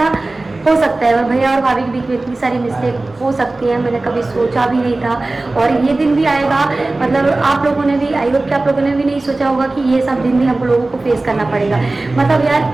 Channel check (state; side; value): quieter; left; 3.1 dB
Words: हो सकता है और भैया और भाभी के बीच में इतनी सारी मिस्टेक हो सकती है, मैंने कभी सोचा भी नहीं था और ये दिन भी आएगा। मतलब आप लोगों ने भी, आई होप कि आप लोगों ने भी नहीं सोचा होगा कि ये सब दिन भी हम लोगों को फेस करना पड़ेगा। मतलब